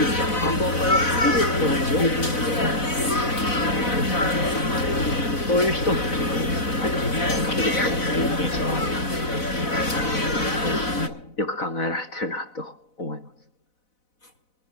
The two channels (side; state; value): right; late; 4.0 ms